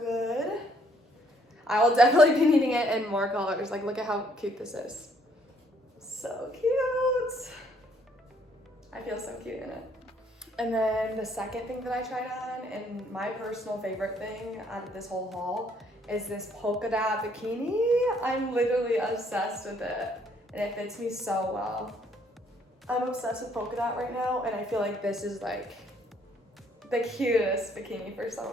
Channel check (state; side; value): normal; both; correlation 0.66